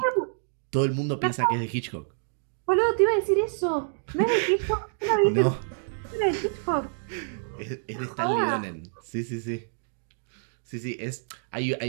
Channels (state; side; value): silent; left; digital silence